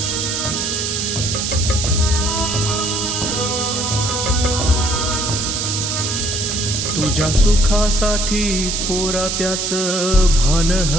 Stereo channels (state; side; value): noise; right; hiss, 1 dB below the sound